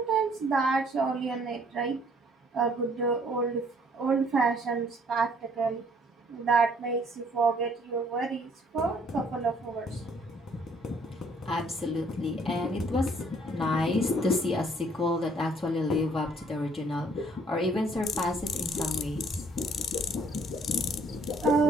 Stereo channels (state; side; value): normal; both; correlation 0.62